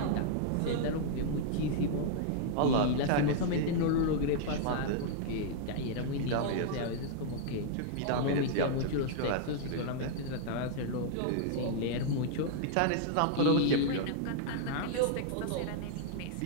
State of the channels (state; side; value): different; both; correlation -0.01